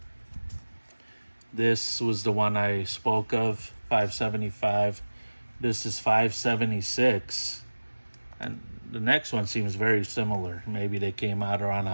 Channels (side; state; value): both; inverted; correlation -1.00